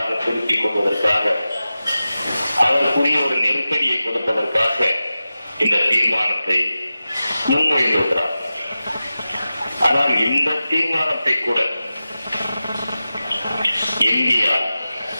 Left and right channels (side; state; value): both; inverted; correlation -0.94